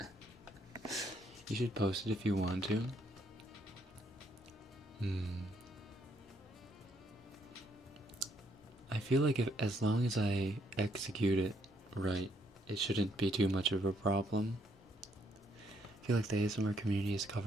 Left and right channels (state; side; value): normal; both; correlation 0.71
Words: You should post it if you want to. I feel like as long as I execute it right, it shouldn't be too much of a problem. I feel like the ASMR community has